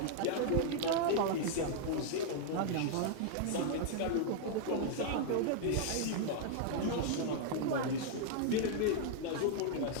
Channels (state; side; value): different; both; correlation -0.01